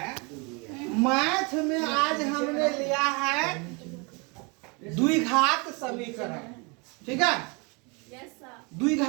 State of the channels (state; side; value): quieter; left; 30.9 dB